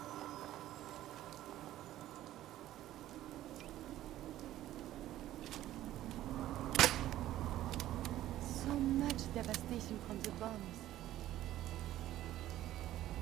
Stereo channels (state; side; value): quieter; left; 13.8 dB